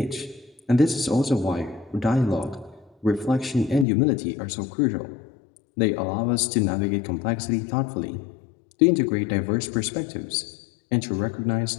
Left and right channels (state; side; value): drops out; right; at 3.9 s